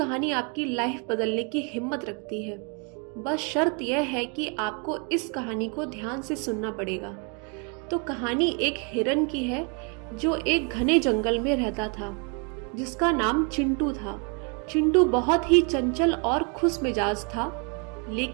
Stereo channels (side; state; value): left; quieter; 36.0 dB